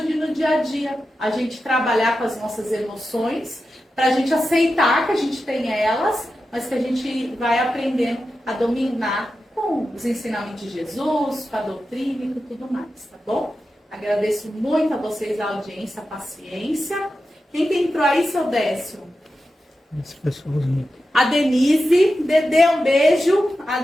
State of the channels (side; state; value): both; normal; correlation 0.91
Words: no dia a dia a gente trabalhar com as nossas emoções, para a gente aceitar que a gente tem elas, mas que a gente vai aprendendo a dominar com os ensinamentos de Jesus, com a doutrina e com tudo mais, tá bom? Agradeço muito a vocês a audiência, a paciência. Quem que entrou aí, seu Décio? As pessoas. A Denise, Dedê, um beijo. A